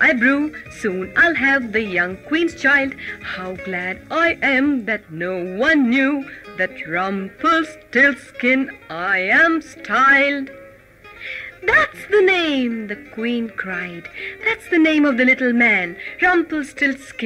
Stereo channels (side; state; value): both; identical; correlation 1.00